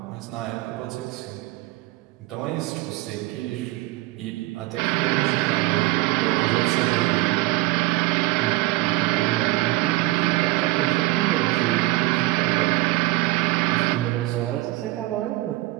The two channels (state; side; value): quieter; left; 20.0 dB